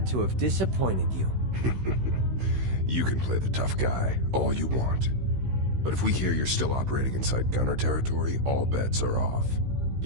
to have disappointed you. You can play the tough guy all you want. But if we hear you're still operating inside Gunner territory, all bets are off.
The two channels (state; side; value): late; left; 16 ms